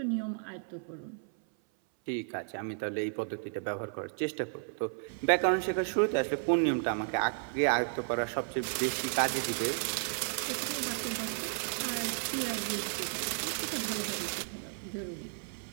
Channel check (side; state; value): left; silent; 56 dB below the other